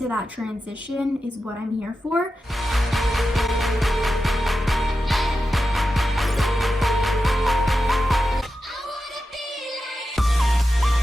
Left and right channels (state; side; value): normal; both; correlation 0.91